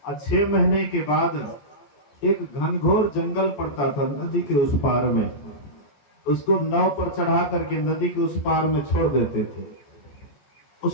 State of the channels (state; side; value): late; right; 14 ms